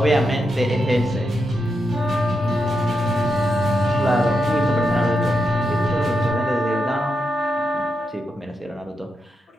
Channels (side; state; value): both; normal; correlation 0.85